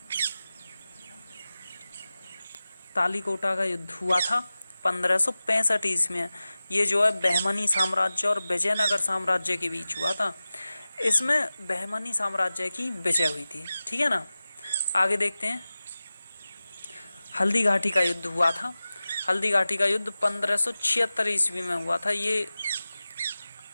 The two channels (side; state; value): both; inverted; correlation -0.96